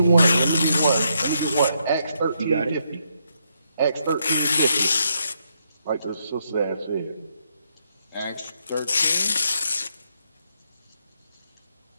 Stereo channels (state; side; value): inverted; both; correlation -0.78